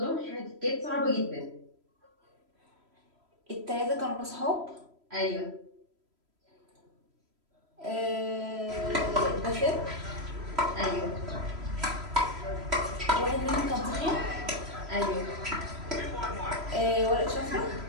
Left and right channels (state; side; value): late; left; 3.0 ms